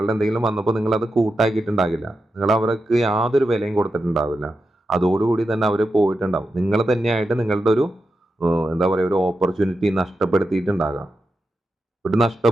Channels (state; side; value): normal; both; correlation 0.89